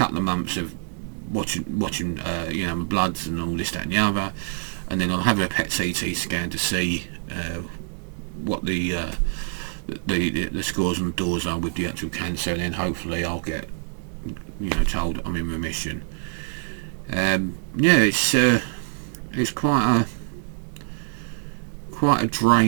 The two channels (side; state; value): left; silent; 61 dB below the other